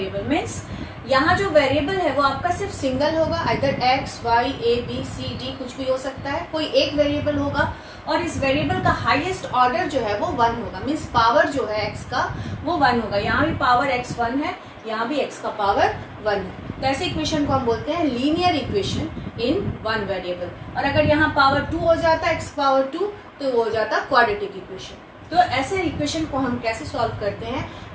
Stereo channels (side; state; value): both; identical; correlation 1.00